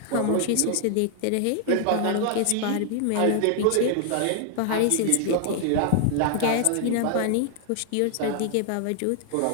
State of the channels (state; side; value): different; both; correlation 0.00